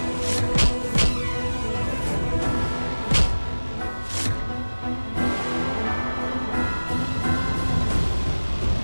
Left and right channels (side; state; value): both; inverted; correlation -1.00